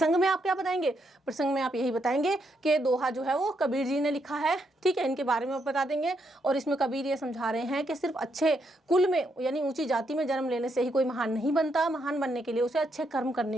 में आप क्या बताएंगे? प्रसंग में आप यही बताएंगे कि दोहा जो है वो कबीर जी ने लिखा है, ठीक है, इनके बारे में आप बता देंगे। और इसमें कबीर ये समझा रहे हैं कि सिर्फ अच्छे कुल में यानी ऊंची जाति में जन्म लेने से ही कोई महान नहीं बनता, महान बनने के लिए उसे अच्छे कर्म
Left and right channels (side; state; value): both; normal; correlation 0.78